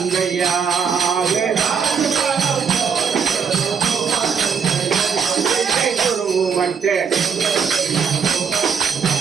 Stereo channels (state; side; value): quieter; left; 6.5 dB